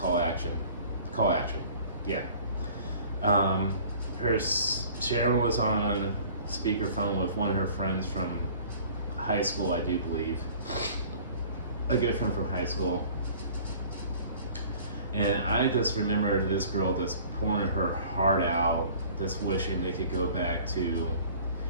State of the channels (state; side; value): inverted; both; correlation -0.49